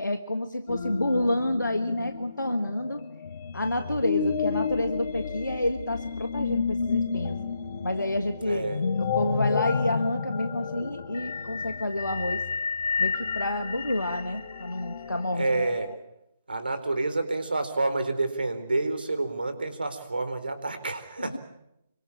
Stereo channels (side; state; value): both; inverted; correlation -0.83